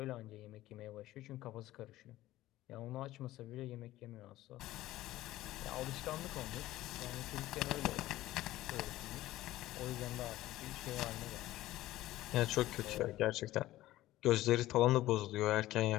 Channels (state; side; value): quieter; right; 15.8 dB